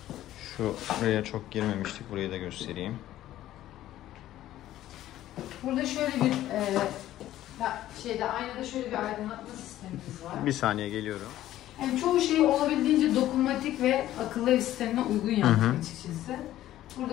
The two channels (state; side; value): quieter; right; 13.6 dB